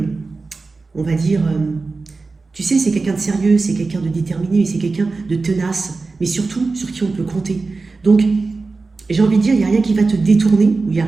on va dire, tu sais, c'est quelqu'un de sérieux, c'est quelqu'un de déterminé, c'est quelqu'un de tenace, mais surtout, sur qui on peut compter. Donc, j'ai envie de dire, il n'y a rien qui va te détourner, ou il n'y a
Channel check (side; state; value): left; quieter; 3.9 dB